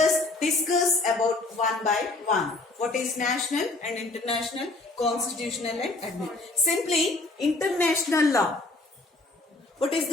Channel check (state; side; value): quieter; right; 3.1 dB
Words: discuss about one by one. What is national and international, constitutional and administrative? Simply, international law. What is